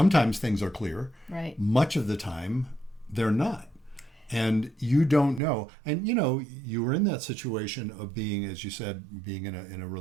things are clear. Right. Much of the time, they're not. And you don't know. And, you were in that situation of being, as you said, being in a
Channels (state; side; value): drops out; left; at 5.4 s